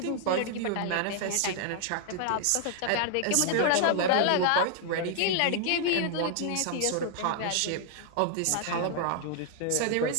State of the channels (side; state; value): both; different; correlation 0.00